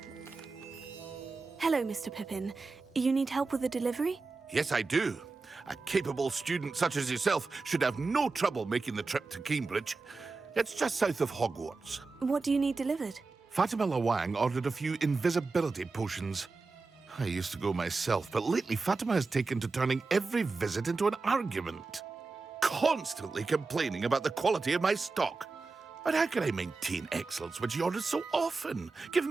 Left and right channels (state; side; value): quieter; left; 4.0 dB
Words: Hello, Mr. Pippin. You need help with a delivery? Yes, I do. A capable student such as yourself should have no trouble making the trip to Cambridge. It's just south of Hogwarts. What do you need delivered? Fatima Lawang ordered a few invisibility potions. I used to go myself, but lately Fatima has taken to turning every visit into an argument. Constantly complaining about the quality of my stock. But how can I maintain excellence when she orders so often,